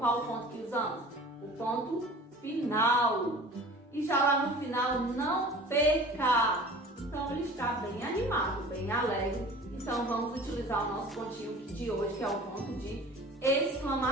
o ponto que usamos? O ponto final. E já lá no final, não perca. Então, ele está bem animado, bem alegre. Então, vamos utilizar o nosso pontinho de hoje, que é o ponto de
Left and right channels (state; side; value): normal; both; correlation 0.43